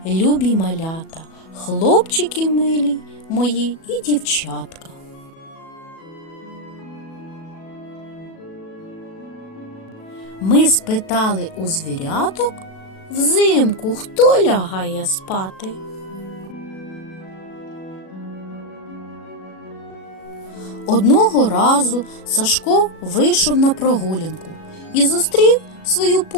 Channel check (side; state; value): right; late; 37 ms